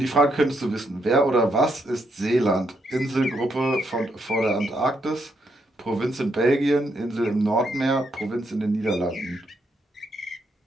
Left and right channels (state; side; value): normal; both; correlation 0.77